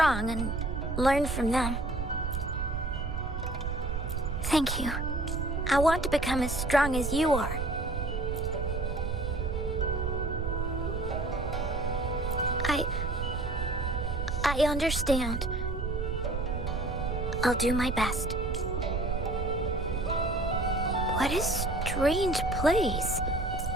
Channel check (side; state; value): right; noise; rumble, 2 dB below the sound